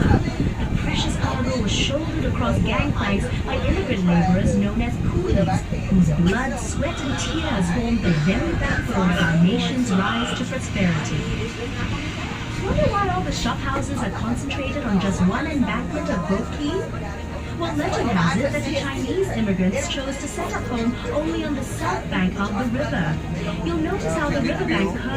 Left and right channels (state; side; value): identical; both; correlation 1.00